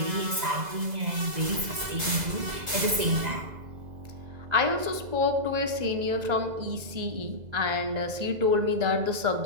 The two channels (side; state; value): left; late; 2.0 ms